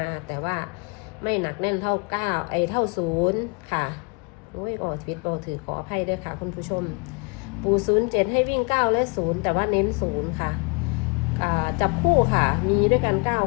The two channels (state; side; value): quieter; right; 32.4 dB